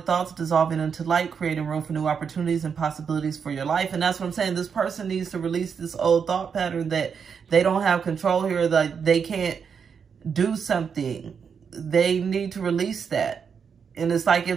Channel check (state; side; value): quieter; left; 6.6 dB